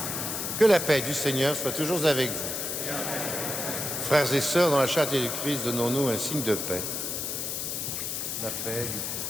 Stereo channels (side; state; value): left; noise; hiss, 3 dB below the sound